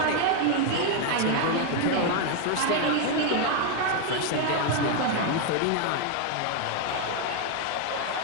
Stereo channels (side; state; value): both; different; correlation 0.01